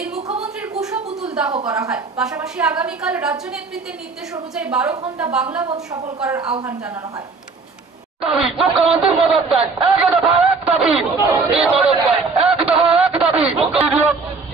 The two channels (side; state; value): left; quieter; 4.3 dB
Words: মুখ্যমন্ত্রীর কুশ পুতুল দাহ করা হয়। পাশাপাশি আগামীকাল রাজ্য নেতৃত্বের নির্দেশ অনুযায়ী 12 ঘন্টা বাংলা বন্ধ সফল করার আহ্বান জানানো হয়। মুখ্যমন্ত্রী পদত্যাগ, এক দফা এক দাবি, এই পদত্যাগ এক দফা এক দাবি,